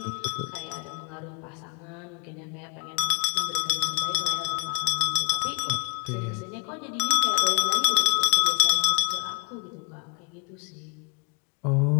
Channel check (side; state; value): right; quieter; 23.2 dB